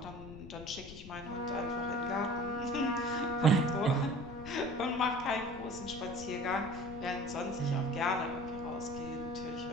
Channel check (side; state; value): left; noise; rumble, 14 dB below the sound